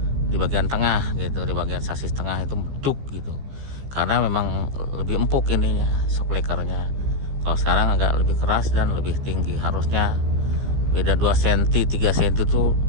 di bagian tengah gitu, di bagian sasis tengah itu meduk gitu, karena memang lebih empuk ininya, shock breakernya. Kalau sekarang agak lebih keras dan lebih tinggi, harusnya beda 2 cm 3 cm itu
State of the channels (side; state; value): left; late; 15 ms